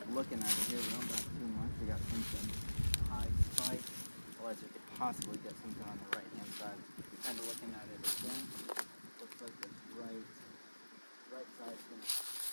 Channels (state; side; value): inverted; both; correlation -1.00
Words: Looking at it here, we don't got too much. We got something high spike, otherwise we could possibly get something on the right hand side. Kind of looking at it again, looks like this right side is going to